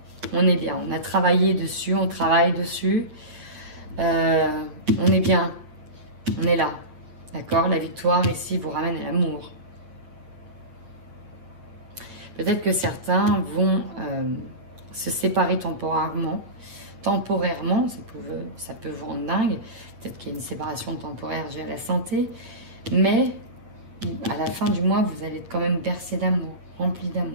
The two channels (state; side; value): late; left; 8.8 ms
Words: On est bien, on a travaillé dessus, on travaille dessus. On est bien, on est là. D'accord? La victoire ici vous ramène à l'amour. Peut-être que certains vont se séparer temporairement temporairement, ça peut vous rendre dingue. Peut-être qu'il y a une séparation temporaire due à la santé. Mais à la fin du mois, vous allez être quand même bercé d'amour, rempli